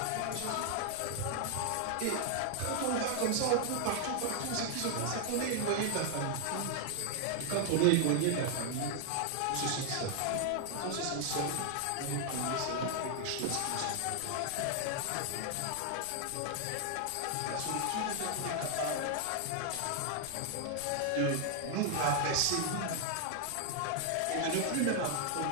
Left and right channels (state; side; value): different; both; correlation 0.00